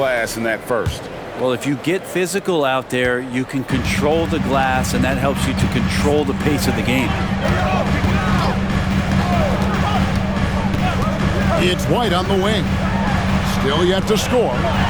in that first. Well, if you get physical out there, you can control the glass, and that helps you to control the pace of the game. It's White on the wing. Still yet to score.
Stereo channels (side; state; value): both; identical; correlation 1.00